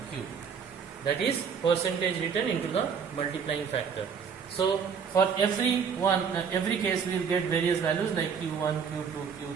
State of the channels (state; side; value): quieter; left; 6.6 dB